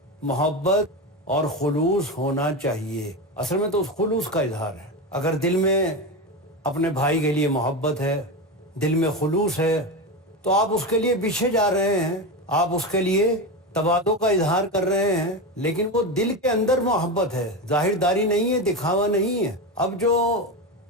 محبت اور خلوص ہونا چاہیے۔ اصل میں تو اس خلوص کا اظہار ہے۔ اگر دل میں اپنے بھائی کے لیے محبت ہے، دل میں خلوص ہے، تو آپ اس کے لیے پیچھے جا رہے ہیں، آپ اس کے لیے تواضع کا اظہار کر رہے ہیں، لیکن وہ دل کے اندر محبت ہے، ظاہر داری نہیں ہے، دکھاوا نہیں ہے۔ اب جو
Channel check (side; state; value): both; normal; correlation 0.18